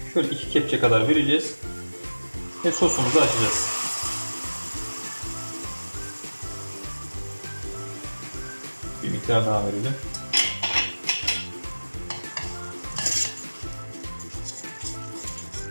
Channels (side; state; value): both; inverted; correlation -1.00